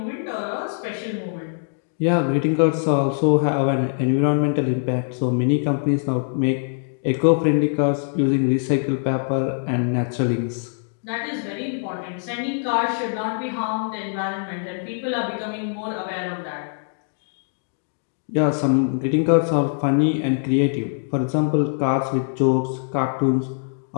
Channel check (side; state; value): right; silent; digital silence